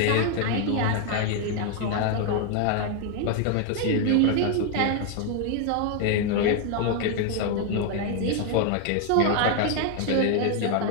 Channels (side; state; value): both; different; correlation 0.01